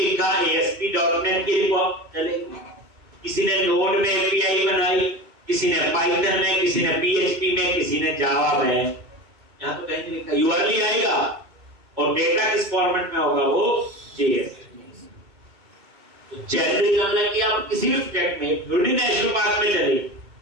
ASP.NET की रिपोर्ट चलेगी। किसी ने नोड में एपीआई बनाई, किसी ने पाइथन में, किसी ने PHP में, किसी ने जावा में। यहां तो कहीं नहीं लिखा। यूआरएल आएगा और डेटा किस फॉर्मेट में होगा? वो JSON। तो जेनेरिक मतलब कि आप किसी भी प्रोजेक्ट में नेशनल पार्क में चले,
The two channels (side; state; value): left; late; 2.2 ms